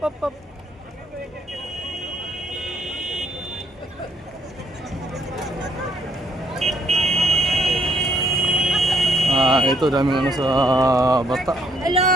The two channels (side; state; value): both; normal; correlation 0.69